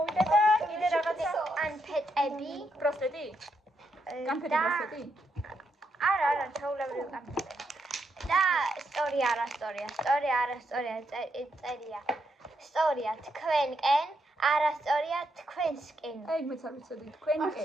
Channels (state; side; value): normal; both; correlation 0.80